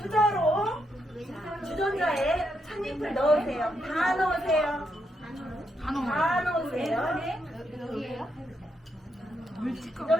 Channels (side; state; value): both; normal; correlation 0.80